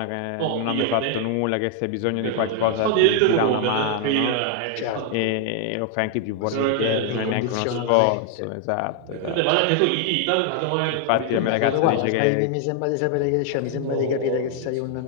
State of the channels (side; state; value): both; different; correlation 0.00